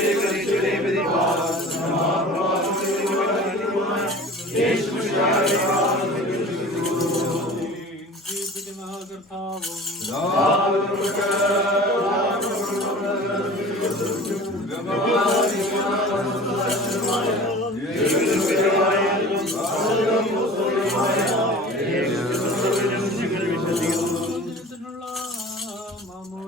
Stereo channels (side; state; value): both; normal; correlation 0.40